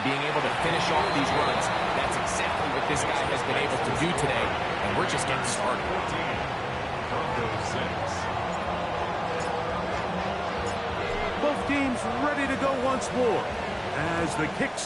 being able to finish off these runs. That's exactly what this guy has been able to do today, and we're just getting started. Both teams ready to go once more as the kick's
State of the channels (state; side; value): identical; both; correlation 1.00